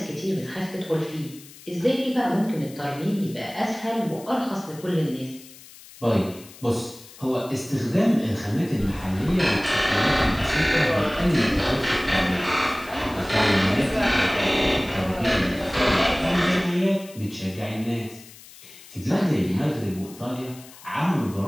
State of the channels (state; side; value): noise; left; hiss, 20 dB below the sound